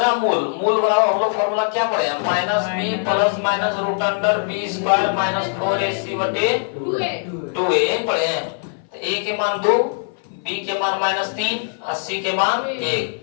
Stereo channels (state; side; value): silent; right; 62 dB below the other